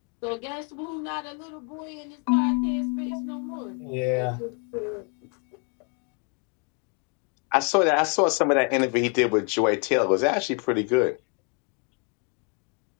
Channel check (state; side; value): quieter; right; 37.8 dB